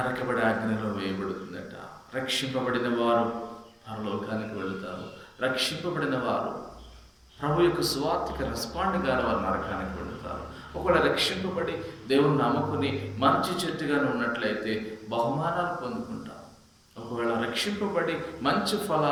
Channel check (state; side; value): identical; both; correlation 1.00